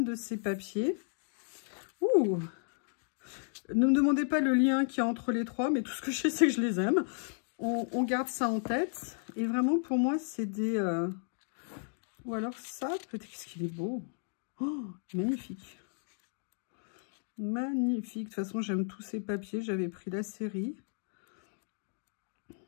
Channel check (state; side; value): silent; right; 55 dB below the other